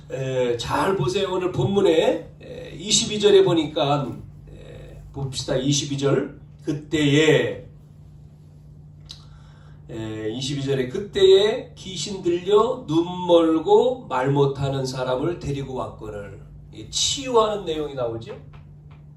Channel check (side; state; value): both; identical; correlation 1.00